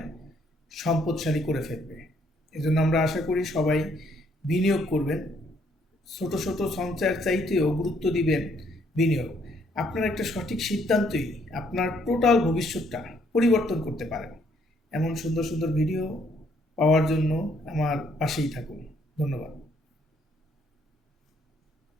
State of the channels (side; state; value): both; normal; correlation 0.68